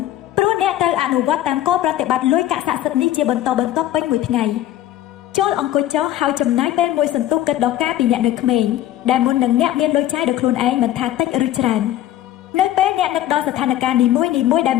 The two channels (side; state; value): right; quieter; 13.2 dB